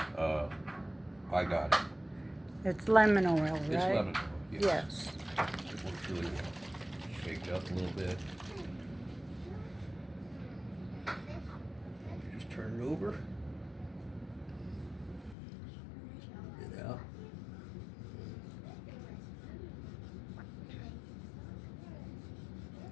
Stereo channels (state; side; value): drops out; right; at 15.4 s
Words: I got it. It's lemon oil, right? It's lemon oil. Yes. It works really well. Shake it up a little bit. Just turn it over. Get it out.